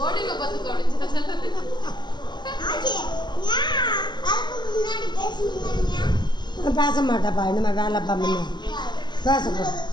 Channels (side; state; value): right; late; 0.21 ms